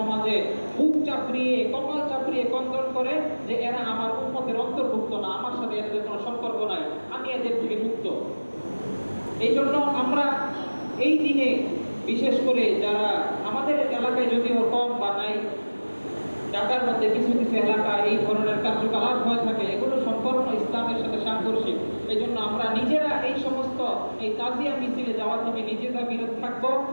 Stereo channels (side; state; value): both; inverted; correlation -1.00